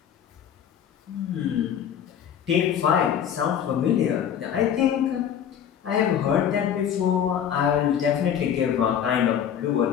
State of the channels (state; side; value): quieter; right; 9.0 dB